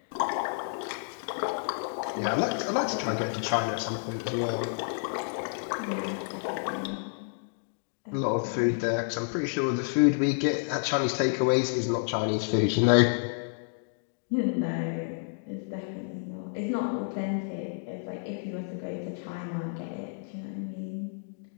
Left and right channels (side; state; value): right; silent; digital silence